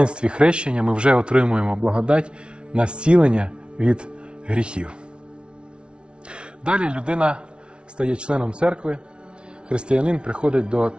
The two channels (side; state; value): left; late; 0.057 ms